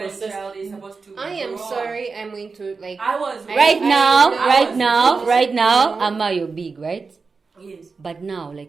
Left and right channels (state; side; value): quieter; left; 4.6 dB